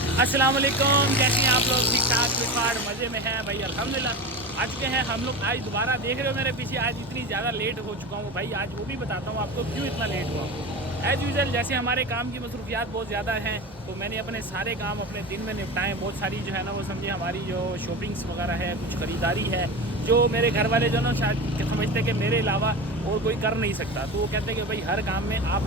अस्सलाम वालेकुम, कैसे हैं आप लोग? ठीक ठाक, फिटफाट, मज़े में हैं भाई? अल्हम्दुलिल्लाह। आज के हैं हम लोग, आज दोबारा देख रहे हो मेरे पीछे, आज इतनी ज़्यादा लेट हो चुका हूँ भाई। आज वो भी बताता हूँ आपको क्यों इतना लेट हुआ हूँ। एज़ यूजल जैसे हमारे काम की मसरूफियात बहुत ज़्यादा हैं, तो मैंने अपने सारे काम अपने दिन में निपटाएँ। बहुत सारी जो है ना वो समझे हमारी जो शॉपिंग्स वगैरह है, कुछ ख़रीदारी है, जो मेरे घर वाले जो ना शायद समझते कि मेरे अलावा और कोई कर नहीं सकता। तो वो कहते हैं कि भाई हर काम में आप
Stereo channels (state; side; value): normal; both; correlation 0.27